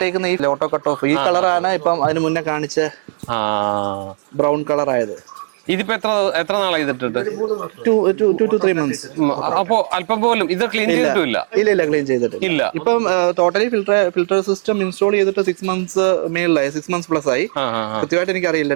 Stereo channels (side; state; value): left; silent; digital silence